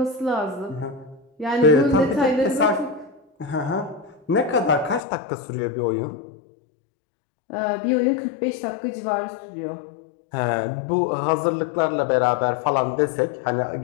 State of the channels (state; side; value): drops out; right; at 5.0 s